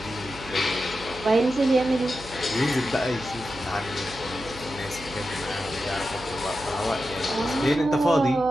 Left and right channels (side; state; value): right; noise; hum, 16 dB below the sound